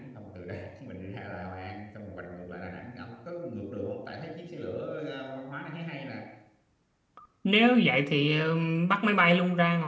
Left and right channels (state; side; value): identical; both; correlation 1.00